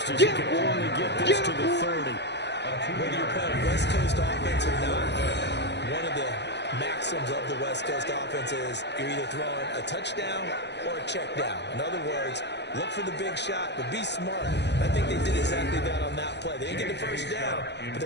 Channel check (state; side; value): late; right; 0.50 ms